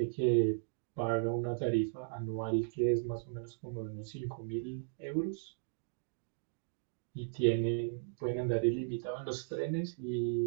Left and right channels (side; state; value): left; silent; digital silence